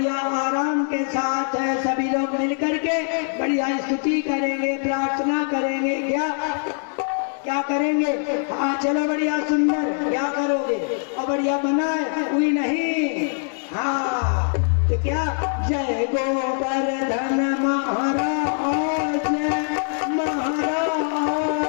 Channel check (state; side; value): silent; right; 59 dB below the other